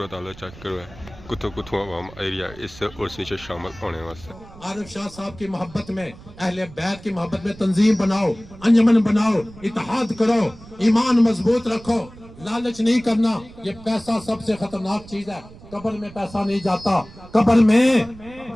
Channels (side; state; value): right; noise; rumble, 19 dB below the sound